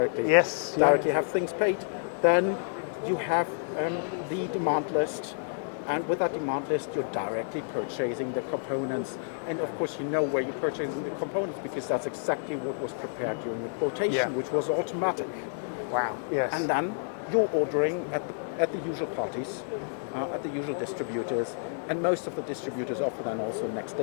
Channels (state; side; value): silent; right; digital silence